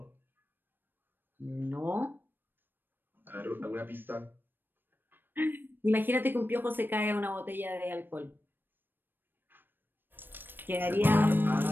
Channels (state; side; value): late; left; 0.095 ms